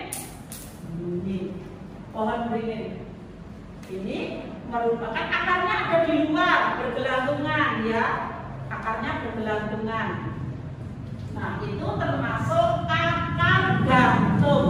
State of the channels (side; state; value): both; identical; correlation 1.00